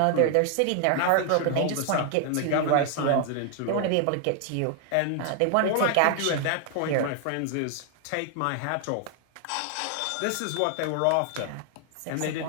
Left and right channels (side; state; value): both; different; correlation 0.00